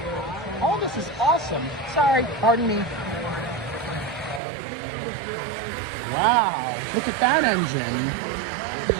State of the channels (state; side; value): drops out; left; at 4.4 s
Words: All this is awesome. Sorry, pardon me. Wow! Look at that engine.